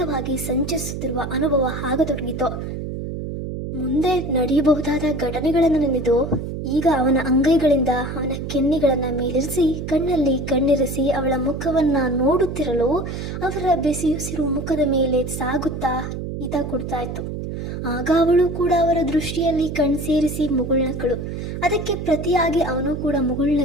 ಸಂಚರಿಸುತ್ತಿರುವ ಅನುಭವ ಆಗತೊಡಗಿತು. ಮುಂದೆ ನಡೆಯಬಹುದಾದ ಘಟನೆಗಳನ್ನು ನೆನೆದು ಈಗ ಅವನ ಅಂಗೈಗಳಿಂದ ಅವನ ಕೆನ್ನೆಗಳನ್ನು ಮೇಲಿರಿಸಿ ಕಣ್ಣಲ್ಲಿ ಕಣ್ಣಿರಿಸಿ ಅವಳ ಮುಖವನ್ನ ನೋಡುತ್ತಿರಲು ಅವರ ಬೆಸಿಯುಸಿರು ಮುಖದ ಮೇಲೆ ಸಾಗುತ್ತಾ ಹಿತ ಕೊಡ್ತಾ ಇತ್ತು. ಆಗ ಅವಳು ಕೂಡ ಅವರ ದೃಷ್ಟಿಯಲ್ಲಿ ಕಣ್ಸೇರಿಸಿ ಮುಗುಳ್ನಕ್ಕಳು. ಅದಕ್ಕೆ ಪ್ರತಿಯಾಗಿ ಅವನು ಕೂಡ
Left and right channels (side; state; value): right; noise; hum, 6 dB below the sound